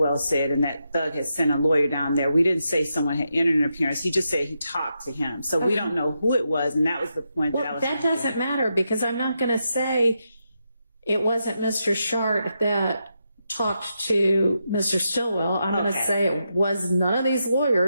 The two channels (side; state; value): both; inverted; correlation -0.84